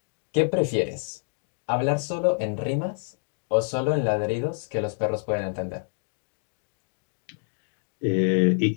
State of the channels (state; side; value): silent; right; digital silence